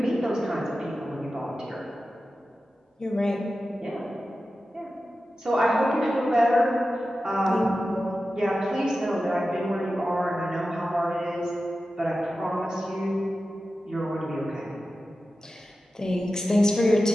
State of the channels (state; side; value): normal; both; correlation 0.93